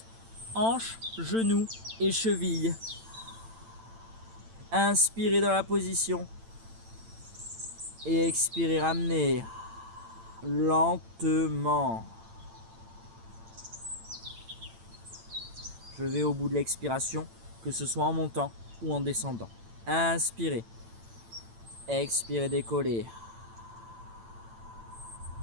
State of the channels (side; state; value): left; late; 8.9 ms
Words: hanche, genou et cheville. Inspirez dans la position. Et expirez, ramenez lentement. Je vais au bout de l'expiration, que ce soit en montant ou en descendant. Inspirez. Expirez, décollez.